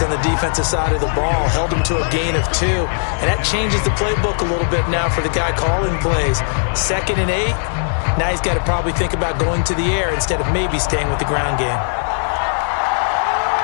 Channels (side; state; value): right; silent; digital silence